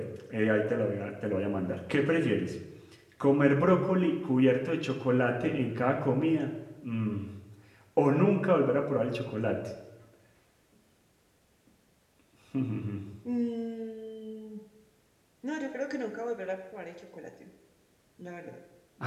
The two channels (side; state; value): both; identical; correlation 1.00